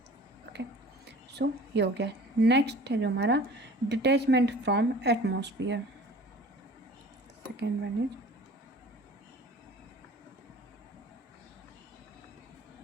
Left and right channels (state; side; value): normal; both; correlation 0.45